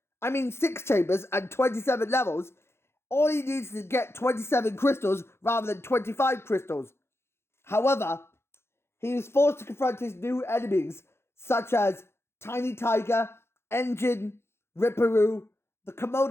6 chambers and 27 levels, all he needs is to get 27 crystals rather than 25 crystals. However, he is forced to confront his new enemies, such as Tiny Tiger, Engine, Ripperoo, the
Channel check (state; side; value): late; right; 0.12 ms